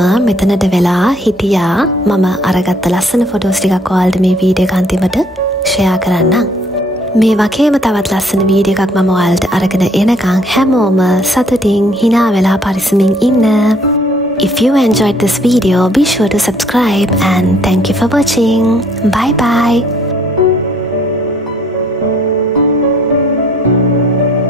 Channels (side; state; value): both; normal; correlation 0.62